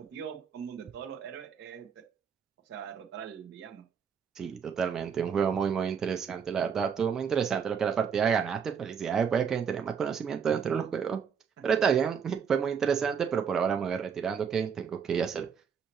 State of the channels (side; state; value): left; quieter; 6.9 dB